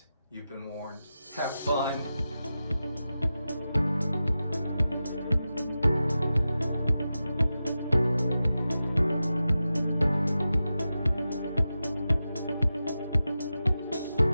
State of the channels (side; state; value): both; inverted; correlation -0.92